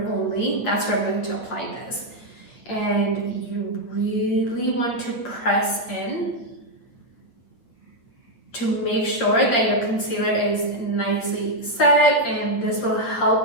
only, that's where I'm going to apply this. And you really want to press in to make sure that your concealer is nicely set, and this will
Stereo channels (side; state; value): right; late; 8.5 ms